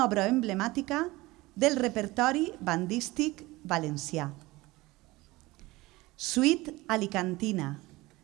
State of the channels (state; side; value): quieter; left; 20.4 dB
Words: obra emblemàtica del repertori bandístic valencià. Suite alicantina,